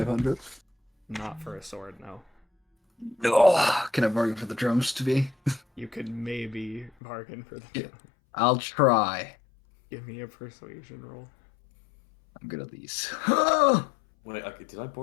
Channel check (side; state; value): right; drops out; at 6.9 s